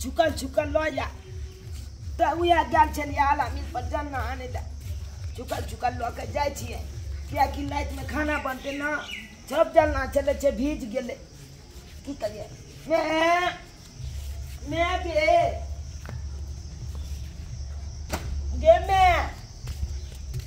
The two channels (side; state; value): both; identical; correlation 1.00